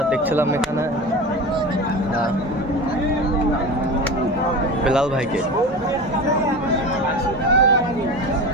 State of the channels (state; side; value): normal; both; correlation 0.29